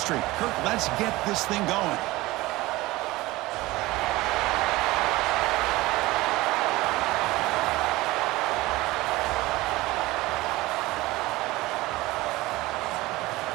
Kirk, let's get this thing going.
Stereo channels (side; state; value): left; quieter; 19.6 dB